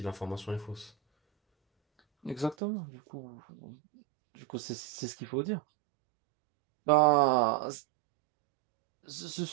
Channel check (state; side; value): drops out; left; at 2.6 s